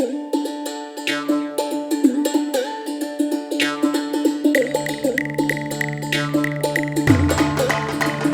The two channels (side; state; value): both; identical; correlation 1.00